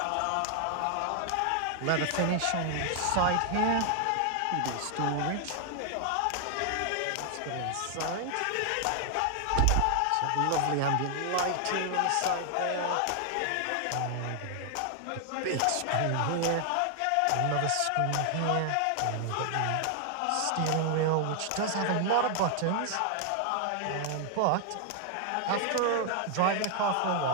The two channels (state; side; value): different; both; correlation 0.00